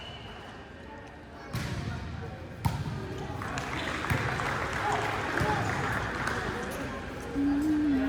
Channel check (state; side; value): identical; both; correlation 1.00